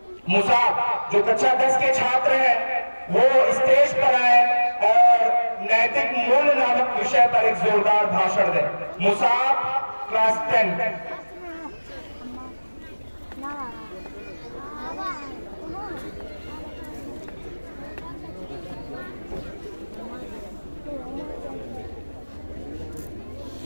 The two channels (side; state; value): both; inverted; correlation -1.00